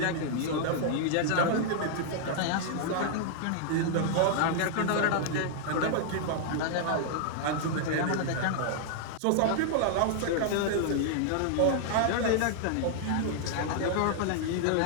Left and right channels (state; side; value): different; both; correlation -0.01